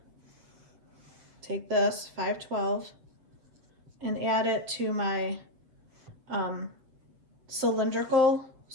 take this, 512, and add it to my cylindrical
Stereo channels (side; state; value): left; late; 7.6 ms